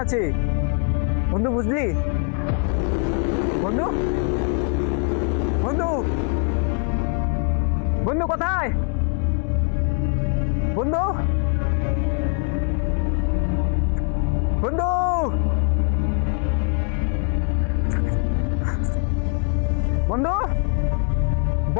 আছে বন্ধু, বুঝলি? বন্ধু বন্ধু বন্ধু কোথায় বন্ধু? বন্ধু বন্ধু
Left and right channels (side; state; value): right; quieter; 39.5 dB